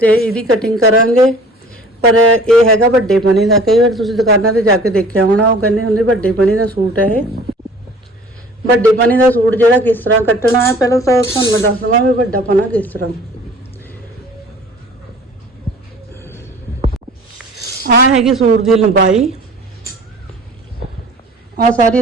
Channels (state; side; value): normal; both; correlation 0.48